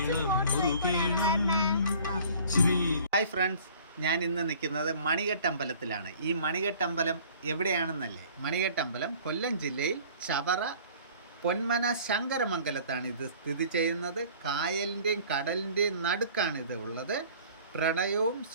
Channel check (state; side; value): inverted; both; correlation -0.50